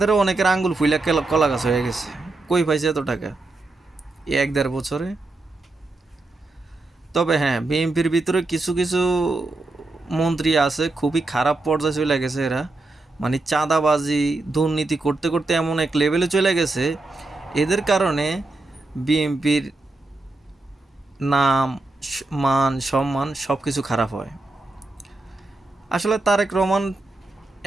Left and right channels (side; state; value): left; quieter; 3.1 dB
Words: অনেকের আঙ্গুল ফুইলা কলা গাছ হয়ে গেছে। কই পাইছে এত টাকা 1-1.5 বছরে? তবে হ্যাঁ, বিএনপির ভিতরে কিছু কিছু মন্ত্রী আছে খুবই খারাপ পর্যায়ে চলে গেছে এরা। মানে চাঁদাবাজি, দুর্নীতি করতে করতে এমন এক লেভেলে চলে গেছে, এদের কারণে বিএনপির নাম, মান, সম্মান সব কিছু খারাপ হয়। আসলে তারেক রহমান